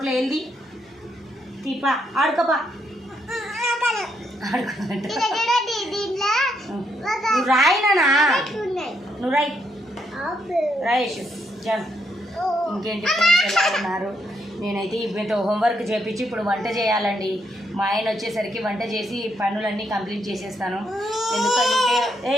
వెళ్ళి తీపా ఆడుకోపా. నువ్వు రాయినా, నువ్వు రాయేషు జాన్. ఇంకేంటి ఫ్రెండ్స్, ఎలా ఉన్నారు? నేనైతే ఇప్పుడైతే హోంవర్క్ చేపించి ఇప్పుడు వంట చేయాలండి. మా ఆయన వచ్చేసరికి వంట చేసి పనులన్నీ కంప్లీట్ చేసేస్తాను. ఎందుకంటే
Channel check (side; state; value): both; normal; correlation 0.76